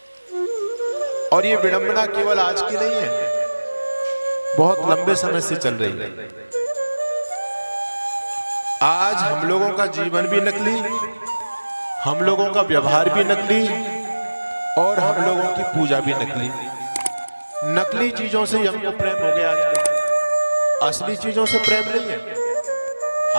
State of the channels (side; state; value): both; inverted; correlation -1.00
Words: और ये विडंबना केवल आज की नहीं है, बहुत लंबे समय से चल रही है। आज हम लोगों का जीवन भी नकली, हम लोगों का व्यवहार भी नकली और हम लोगों की पूजा भी नकली। नकली चीजों से हमको प्रेम हो गया आजकल, असली चीजों से प्रेम नहीं है।